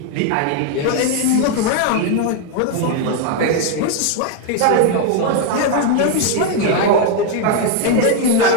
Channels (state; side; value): different; both; correlation 0.01